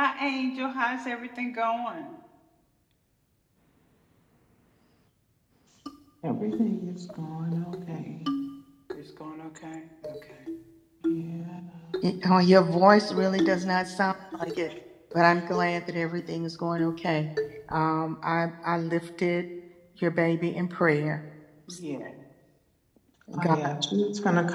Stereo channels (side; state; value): both; identical; correlation 1.00